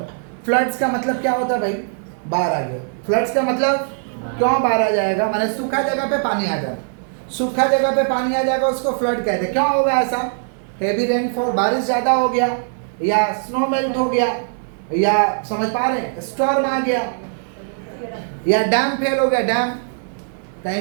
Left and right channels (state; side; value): silent; left; digital silence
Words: फ्लड्स का मतलब क्या होता है भाई? बाहर आ गया। फ्लड्स का मतलब क्यों बाहर आ जाएगा? माने सूखा जगह पे पानी आ जाए, सूखा जगह पे पानी आ जाएगा, उसको फ्लड कहते हैं। क्यों होगा ऐसा? हेवी रेनफॉल, बारिश ज़्यादा हो गया, या स्नो मेल्ट हो गया, या समझ पा रहे हैं, स्टॉर्म आ गया, या डैम फेल हो गया, डैम